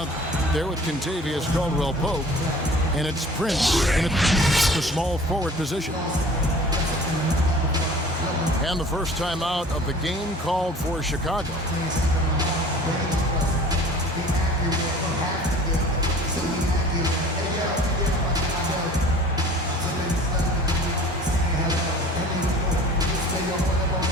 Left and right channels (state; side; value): normal; both; correlation 0.45